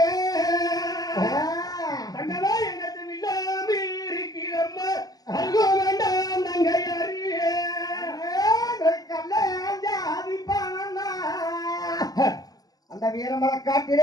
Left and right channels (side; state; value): right; late; 0.18 ms